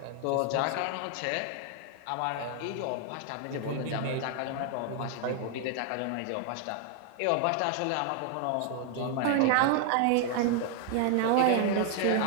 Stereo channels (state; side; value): different; both; correlation 0.00